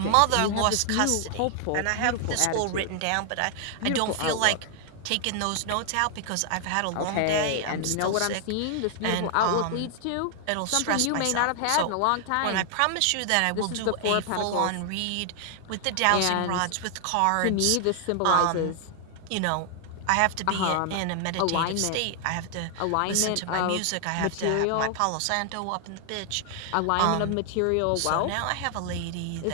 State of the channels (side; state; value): both; different; correlation 0.00